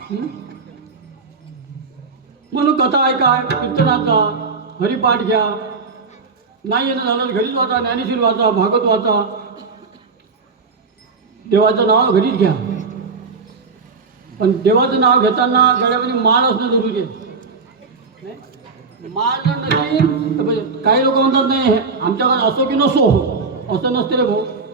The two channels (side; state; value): left; quieter; 4.5 dB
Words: म्हणून कथा ऐका कीर्तनाचा हरिपाठ घ्या. नाही येणं झालं घरीच वाचा. ज्ञानेश्वर वाचा भागवत वाचा. देवाचं नाव घरीच घ्या. पण देवाचं नाव घेताना गळ्यामध्ये माळ असणं जरुरी आहे. माळ जर नसेल तर काही लोक म्हणतात नाही आमच्याकडे असो की नसो असं नसते रे भाऊ.